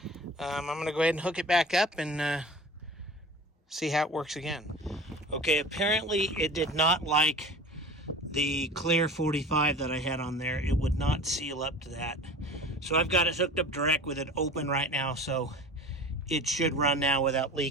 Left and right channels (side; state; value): both; normal; correlation 0.39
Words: I'm going to go ahead and hook it back up and see how it works again. Okay, apparently it did not like the clear 45 that I had on there. It would not seal up to that. So I've got it hooked up direct with it open right now, so it should run now without